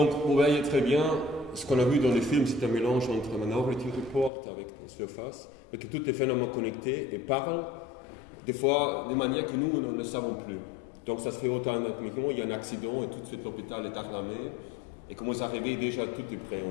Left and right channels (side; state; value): right; drops out; at 4.3 s